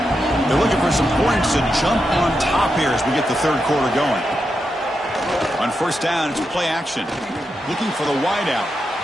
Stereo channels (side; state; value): both; normal; correlation 0.86